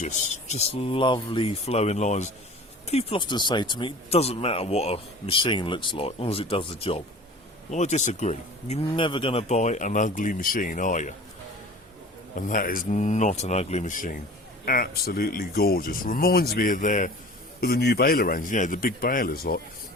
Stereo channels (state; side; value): normal; both; correlation 0.42